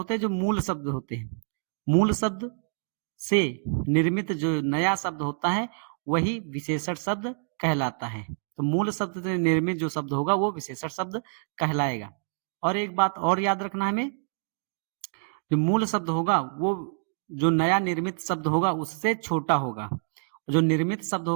हैं जो मूल शब्द होते हैं। मूल शब्द से निर्मित जो नया शब्द होता है वही विशेषण शब्द कहलाता है। तो मूल शब्द से निर्मित जो शब्द होगा वो विशेषण शब्द कहलाएगा। और एक बात और याद रखना हमें, जो मूल शब्द होगा वो जो नया निर्मित शब्द होगा उससे छोटा होगा। जो निर्मित शब्द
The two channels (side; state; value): left; silent; digital silence